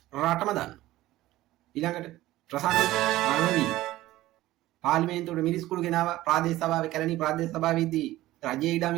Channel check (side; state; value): left; quieter; 16.2 dB